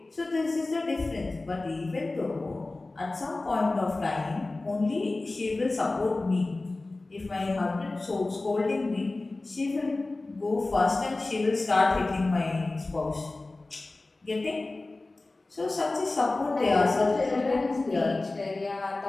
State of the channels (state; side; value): quieter; right; 3.1 dB